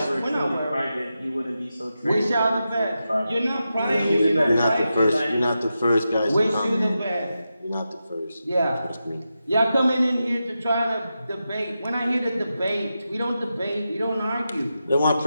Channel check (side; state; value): both; inverted; correlation -0.89